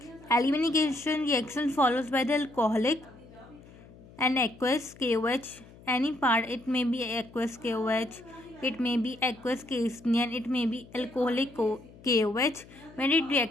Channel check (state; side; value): noise; left; hum, 22 dB below the sound